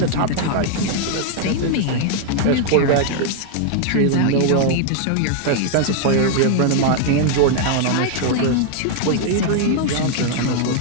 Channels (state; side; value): different; both; correlation 0.00